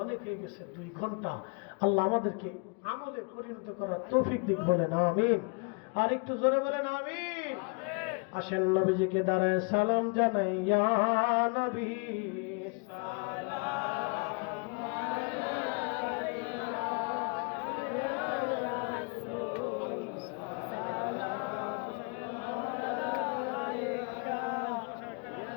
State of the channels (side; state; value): right; quieter; 34.0 dB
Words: অনেক হয়ে গেছে, 2 ঘন্টা। আল্লাহ আমাদেরকে আমলে পরিণত করার তৌফিক দিক, বলেন আমিন। আর একটু জোরে বলেন আমিন। আসেন নবীজিকে দাঁড়ায় সালাম জানাই, ইয়া নবী সালাম আলাইকা, ইয়া রাসূল সালাম আলাইকা,